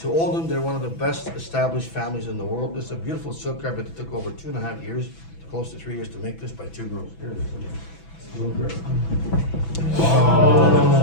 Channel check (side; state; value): right; late; 6.0 ms